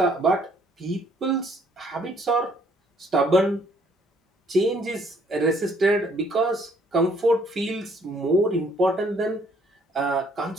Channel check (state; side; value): normal; both; correlation 0.63